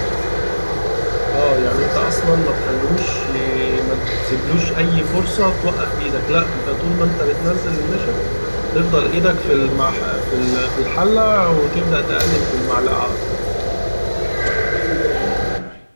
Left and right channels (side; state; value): both; inverted; correlation -1.00